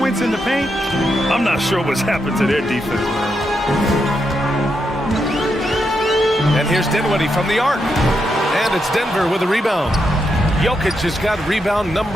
in the paint. I'm not sure what's happened to their defense, man. And here's Dinwiddie from the arc. And it's Denver with a rebound. Jokic has got rebound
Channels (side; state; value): both; normal; correlation 0.83